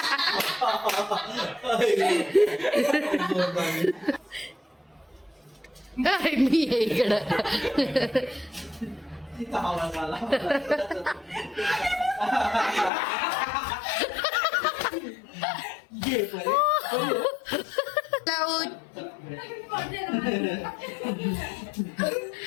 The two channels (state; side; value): drops out; right; at 12.9 s